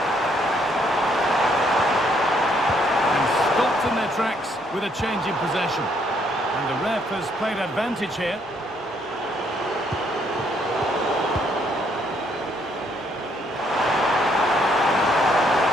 And stopped in their tracks with a change in possession. And the ref has played advantage here.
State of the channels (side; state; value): both; normal; correlation 0.69